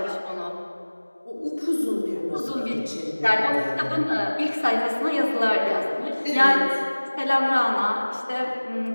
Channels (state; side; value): inverted; both; correlation -1.00